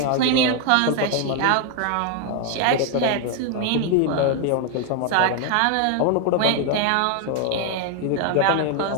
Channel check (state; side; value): different; both; correlation 0.00